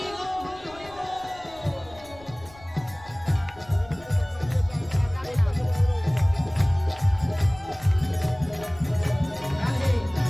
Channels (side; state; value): left; noise; rumble, 22 dB below the sound